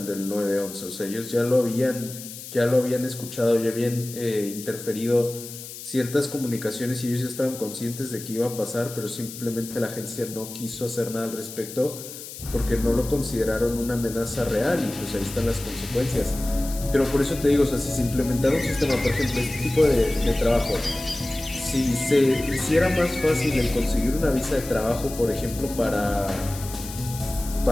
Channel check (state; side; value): noise; left; hiss, 12 dB below the sound